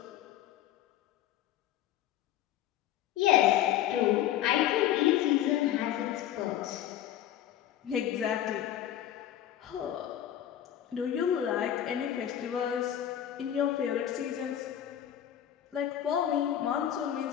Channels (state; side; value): quieter; right; 11.3 dB